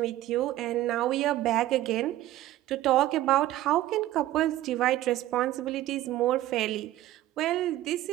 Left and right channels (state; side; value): quieter; left; 14.7 dB